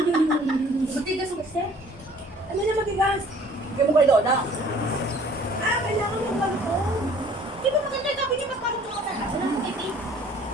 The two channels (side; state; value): both; normal; correlation 0.54